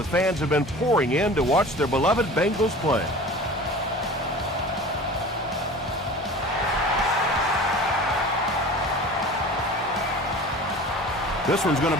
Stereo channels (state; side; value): normal; both; correlation 0.39